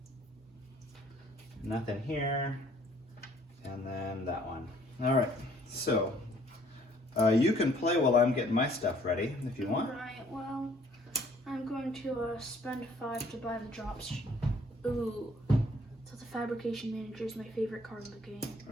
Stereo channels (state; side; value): normal; both; correlation 0.60